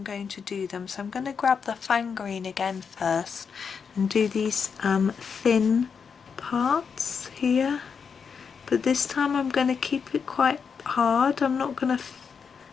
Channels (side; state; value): right; quieter; 6.2 dB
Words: going to do them. So I'm going to grab the Fang Green again first and do these thin parts here. But this time I'm going to keep it quite hard. I'm not going to